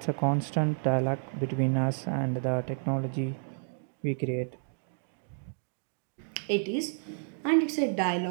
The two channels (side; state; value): left; silent; digital silence